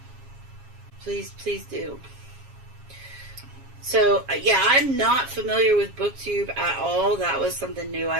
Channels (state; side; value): late; left; 7.3 ms